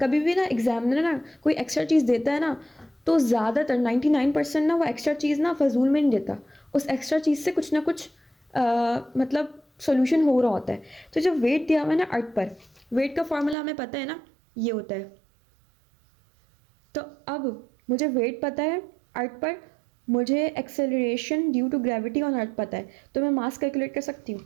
भी ना एग्जामिनर ना कोई एक्स्ट्रा चीज़ देता है ना, तो ज़्यादातर 99% ना वो एक्स्ट्रा चीज़ ना फजूल में नहीं देता, उस एक्स्ट्रा चीज़ से कुछ ना कुछ मतलब सोल्यूशन हो रहा होता है। तो जब वेट दिया हुआ है ना अर्थ पर, वेट का फॉर्मूला हमें पता है ना, ये होता है। तो अब मुझे वेट पता है अर्थ पर, मुझे acceleration due to gravity on earth पता है, तो मैं मास कैलकुलेट कर सकती हूँ।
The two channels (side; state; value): left; drops out; at 13.6 s